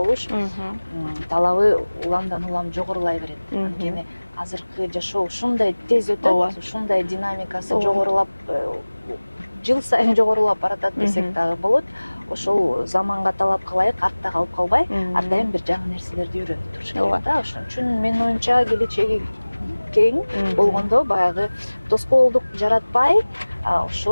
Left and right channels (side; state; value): both; inverted; correlation -1.00